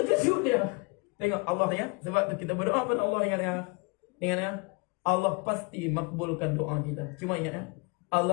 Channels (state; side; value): quieter; right; 29.9 dB